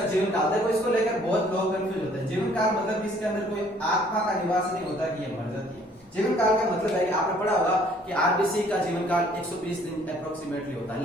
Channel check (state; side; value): normal; both; correlation 0.59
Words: जीवन काल। देखो इसको लेकर बहुत लोग कंफ्यूज होते हैं। जीवन काल मतलब इसके अंदर कोई आत्मा का निवास नहीं होता कि ये मर जाती है। जीवन काल का मतलब है कि आपने पढ़ा होगा कि आरबीसी का जीवन काल 120 दिन अप्रोक्सीमेटली होता है,